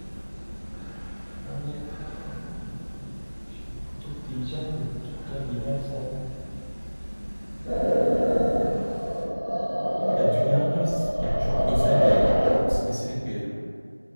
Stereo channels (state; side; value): inverted; both; correlation -1.00